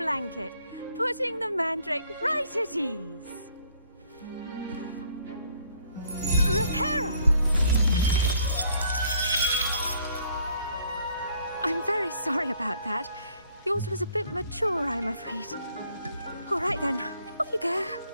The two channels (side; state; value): both; inverted; correlation -0.64